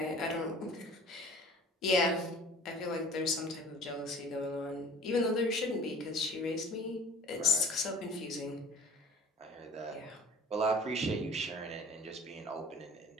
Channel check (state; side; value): normal; both; correlation 0.46